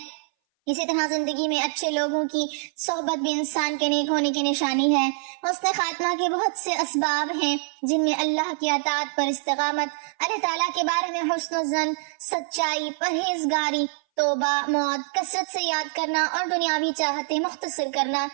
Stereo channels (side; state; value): left; silent; 59 dB below the other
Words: اسی طرح زندگی میں اچھے لوگوں کی صحبت بھی انسان کے نیک ہونے کی نشانی ہے۔ حسن خاتمہ کے بہت سے اسباب ہیں جن میں اللہ کی اطاعت پر استقامت، اللہ تعالیٰ کے بارے میں حسن الظن، سچائی، پرہیزگاری، توبہ، موت، کثرت سے یاد کرنا اور دنیاوی چاہتے مختصر کرنا،